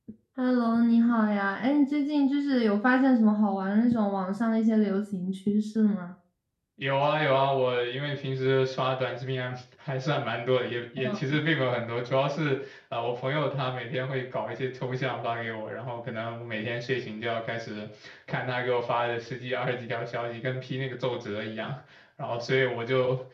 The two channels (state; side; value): identical; both; correlation 1.00